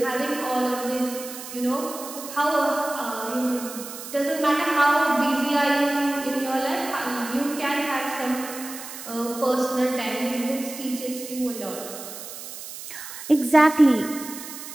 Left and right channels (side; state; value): right; noise; hiss, 11 dB below the sound